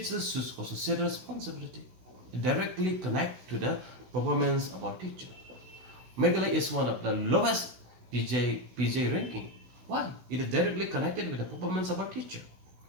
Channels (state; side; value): late; left; 16 ms